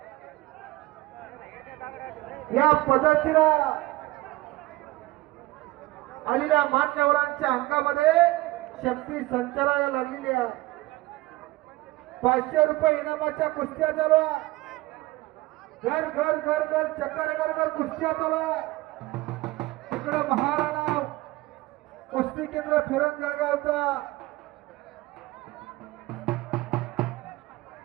या पद्धतीनं आलेल्या मान्यवरांच्या अंगामध्ये शक्ती संचाराला लागलेली आहे. 500 रुपये इनामाच्या कुस्त्या चालू आहे. घर घर घर घर चक्कर घर घर कुस्त्या चालू आहे. इकडे महाराणा कुस्ती केंद्र फिरण जळगावचा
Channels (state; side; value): quieter; left; 19.6 dB